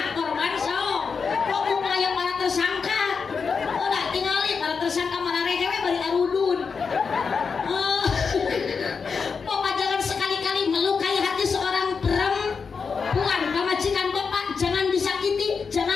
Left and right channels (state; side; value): quieter; right; 5.5 dB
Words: korban sok. Kok mulai para tersangka? Udah tinggalin para tersangka mana rehewe bari arudun. Bapak jangan sekali-kali melukai hati seorang perempuan. Pamajikan Bapak jangan disakiti,